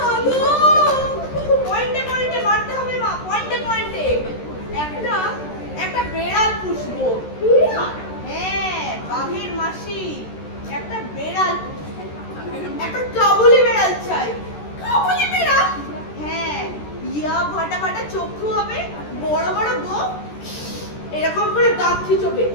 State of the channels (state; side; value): late; right; 13 ms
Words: গো, পয়েন্টে পয়েন্টে মারতে হবে মা, পয়েন্টে পয়েন্টে। একটা বেড়াল পুষবো। বেড়াল? হ্যাঁ, বাঘের মাসি একটা বেড়াল, একটা কাবুলি বেড়াল চাই। কাবুলি বেড়াল? হ্যাঁ, ইয়া ফাটা ফাটা চক্ষু হবে, বড় বড় গোঁফ, এরকম করে দাঁত খিচবে।